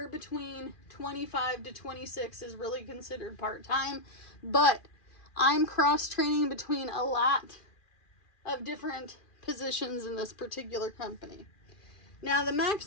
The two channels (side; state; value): right; late; 2.4 ms